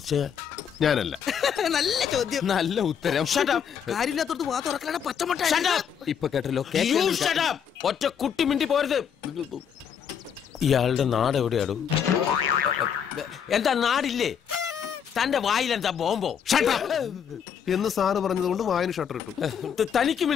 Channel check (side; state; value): right; quieter; 7.9 dB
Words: ഞാനല്ല. നല്ല ചോദ്യം. നല്ല ഉത്തരം. കാര്യമില്ലാത്തോടത്ത് വാ തുറക്കലാണ് പച്ചമുട്ട. ഇപ്പൊ കേട്ടല്ലോ. ഒറ്റ കുട്ടി മിണ്ടി പോരുത്. ഇയാളുടെ നാട് എവിടെയാടോ? എന്താ നാടില്ലേ? തന്റെ വായിലെന്താ ബോംബോ? എന്ന് സാറ് പറഞ്ഞതുകൊണ്ട് വായന ഷട്ടർ ഇട്ടു. തനിക്ക്